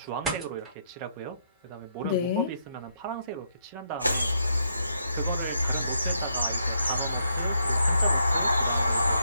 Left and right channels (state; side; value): inverted; both; correlation -0.76